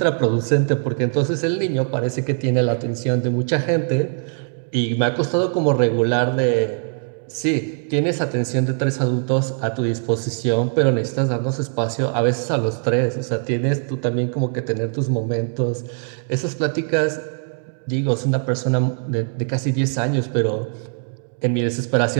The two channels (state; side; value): silent; left; 58 dB below the other